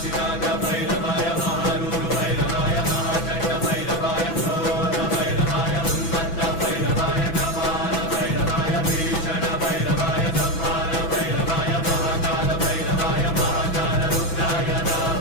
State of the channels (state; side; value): late; right; 6.0 ms